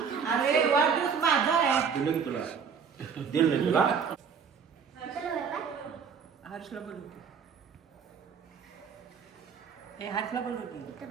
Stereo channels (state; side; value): quieter; left; 6.4 dB